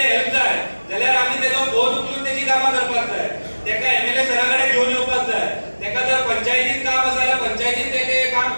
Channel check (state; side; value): inverted; both; correlation -1.00